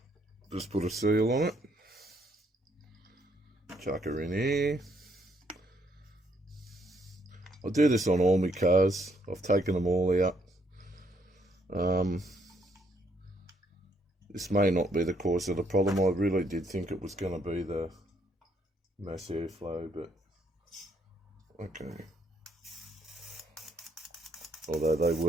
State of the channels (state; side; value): normal; both; correlation 0.71